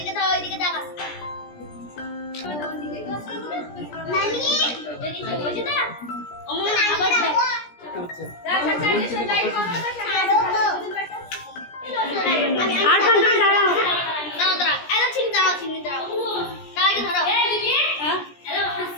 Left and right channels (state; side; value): late; right; 17 ms